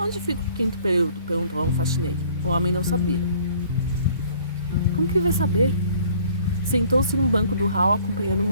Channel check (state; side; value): inverted; both; correlation -0.56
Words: fica o 5º período? Perguntou a um faxineiro. O homem não sabia. Como que ele vai saber? Sentou-se no banco do hall acompanhando o